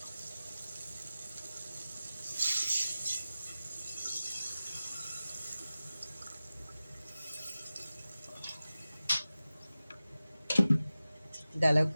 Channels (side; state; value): both; inverted; correlation -0.96